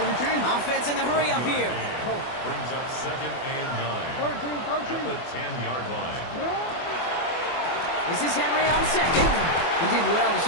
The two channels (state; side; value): late; right; 24 ms